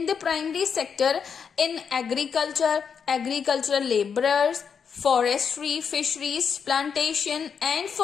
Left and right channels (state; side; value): quieter; right; 6.7 dB